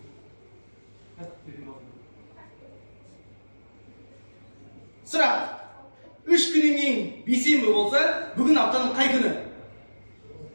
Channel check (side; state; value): both; inverted; correlation -1.00